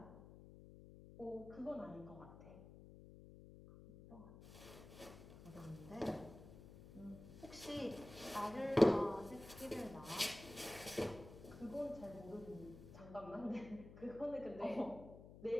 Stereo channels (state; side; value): noise; left; hum, 16 dB below the sound